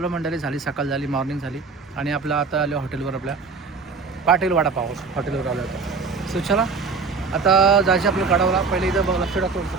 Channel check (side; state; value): left; quieter; 4.7 dB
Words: मंडळी, झाली सकाळ, झाली मॉर्निंग झाली आणि आपलं आता आलो हॉटेलवर, आपल्या पाटील वडापाव हॉटेलवर आलो होतं. सो चला आता जायचं आपलं कडावला. पहिले इथं बघ लक्ष टाकतो